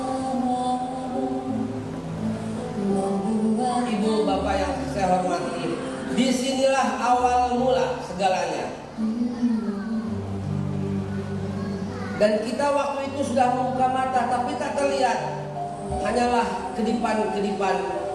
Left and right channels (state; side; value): identical; both; correlation 1.00